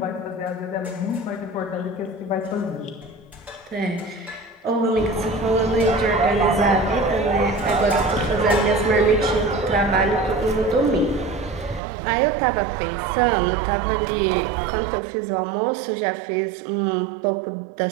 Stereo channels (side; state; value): left; drops out; at 11.8 s